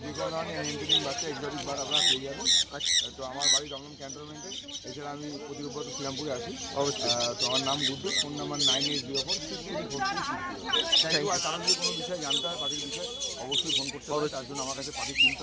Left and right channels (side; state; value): both; identical; correlation 1.00